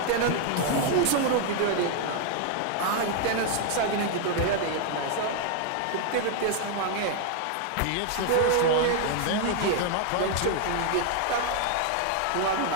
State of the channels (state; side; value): different; both; correlation 0.00